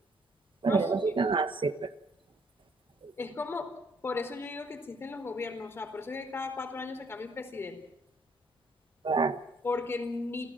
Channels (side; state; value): both; normal; correlation 0.64